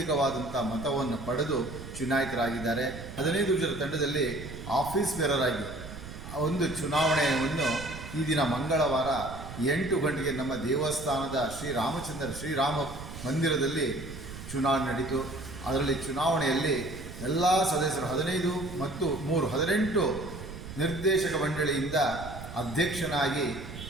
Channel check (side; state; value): right; noise; rumble, 11 dB below the sound